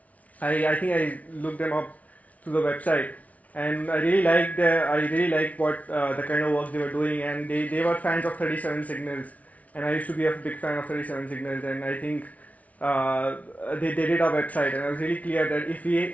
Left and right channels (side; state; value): right; late; 0.069 ms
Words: I think I looked them up through the website, and I really liked what the kind of work they were doing, and they were fans of 37 Signals, and I used to be a big fan of 37 Signals, and I think they did our website, and I was really clear that if